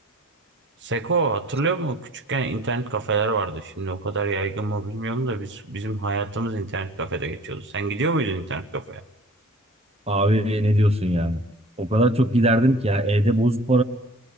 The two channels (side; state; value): both; normal; correlation 0.48